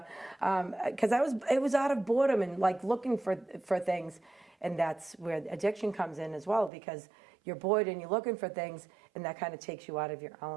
because it was out of boredom and like looking for things. And that's where addiction comes in as well, because you're bored and you're looking for things, and that kind of takes you out of your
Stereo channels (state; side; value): drops out; left; at 6.7 s